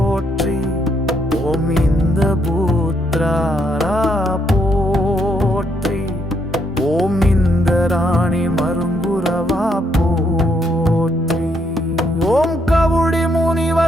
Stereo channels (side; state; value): both; normal; correlation 0.74